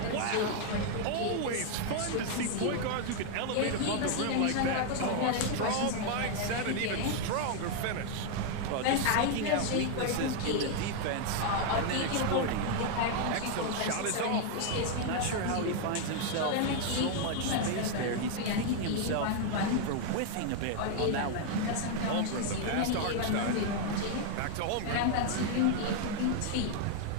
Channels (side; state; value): both; different; correlation 0.00